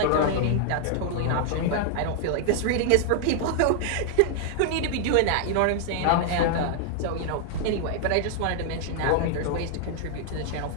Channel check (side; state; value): both; different; correlation 0.00